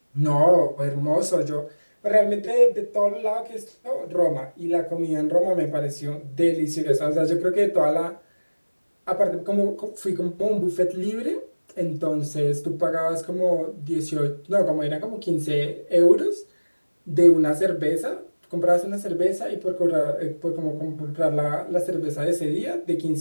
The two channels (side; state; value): both; inverted; correlation -1.00